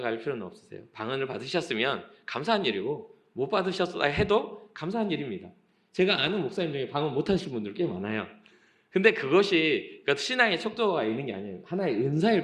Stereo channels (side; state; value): both; identical; correlation 1.00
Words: 필요는 없으세요. 방언을 받으셨으면 감사한 일이고 못 받으셨다 해도 감사한 일입니다. 제가 아는 목사님 중에 방언 못하신 분들 꽤 많아요. 근데 그것이 신앙의 척도가 있는 게 아니에요. 하나의